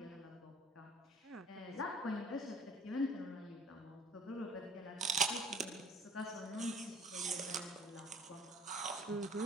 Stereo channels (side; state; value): both; normal; correlation 0.50